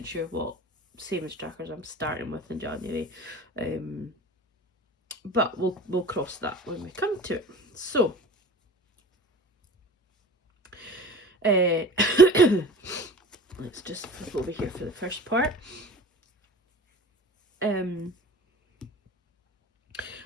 sure what savings trackers I'm starting with in January. But we'll cross that when we come to it. So let's just flip over here for the first part. So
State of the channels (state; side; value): normal; both; correlation 0.39